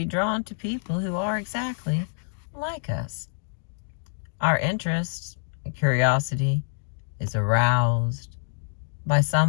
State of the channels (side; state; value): right; silent; digital silence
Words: drawn to people who are exactly like us. Our interest and curiosity is aroused by